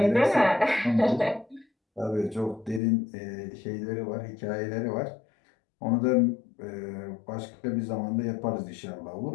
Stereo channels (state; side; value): drops out; right; at 2.8 s